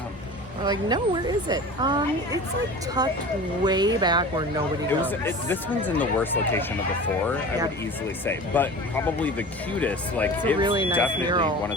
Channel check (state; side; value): normal; both; correlation 0.36